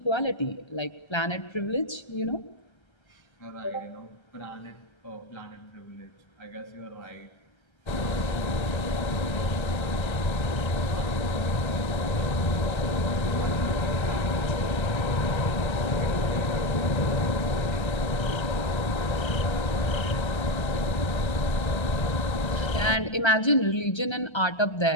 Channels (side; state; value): right; late; 1.3 ms